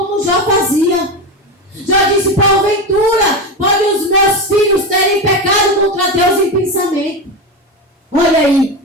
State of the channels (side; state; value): both; normal; correlation 0.18